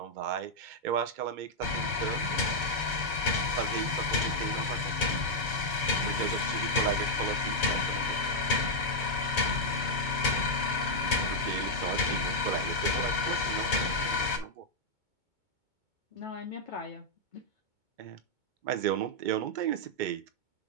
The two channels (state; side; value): late; left; 2.2 ms